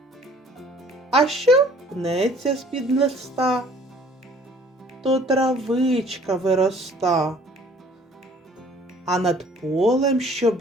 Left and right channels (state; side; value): normal; both; correlation 0.54